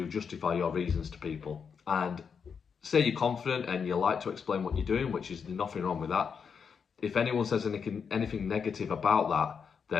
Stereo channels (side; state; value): right; quieter; 6.4 dB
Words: justify your reasons to people. And say you're confident and you like to explain what you're doing, which is nothing wrong with that. If anyone says anything negative about that,